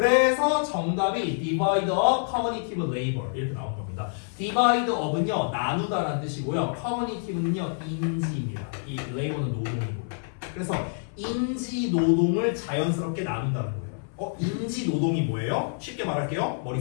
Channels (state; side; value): silent; right; 56 dB below the other